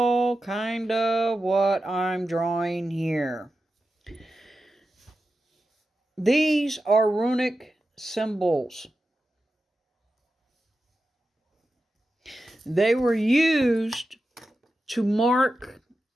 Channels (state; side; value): normal; both; correlation 0.91